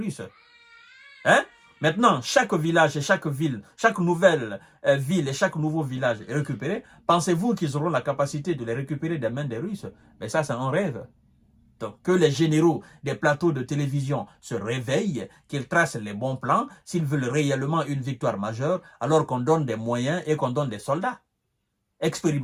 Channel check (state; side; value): identical; both; correlation 1.00